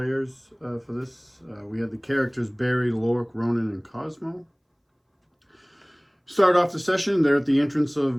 for this. We had the characters Barry, Lork, Rhonin, and Cosmo. Start off the session. They're at the entrance of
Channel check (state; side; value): identical; both; correlation 1.00